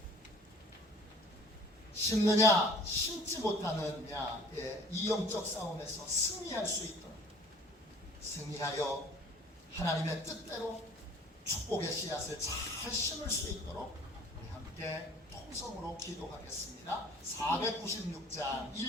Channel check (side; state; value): both; normal; correlation 0.50